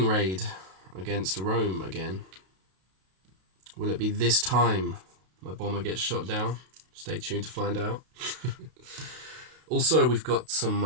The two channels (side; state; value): left; late; 32 ms